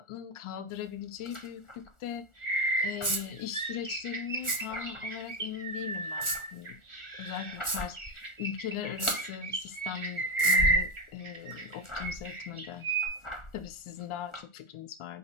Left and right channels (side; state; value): right; late; 1.4 ms